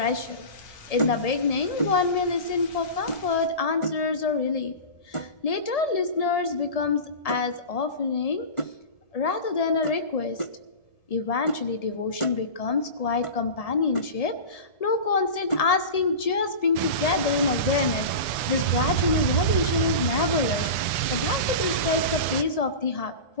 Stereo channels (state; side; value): late; right; 1.7 ms